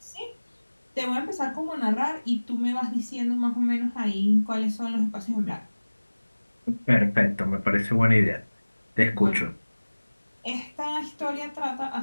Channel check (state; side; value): inverted; both; correlation -1.00